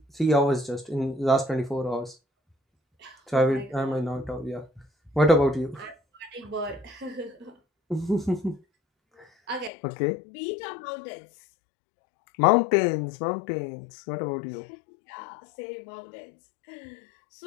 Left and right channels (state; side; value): drops out; right; at 9.7 s